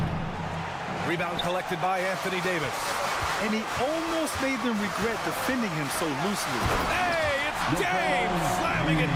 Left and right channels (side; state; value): both; identical; correlation 1.00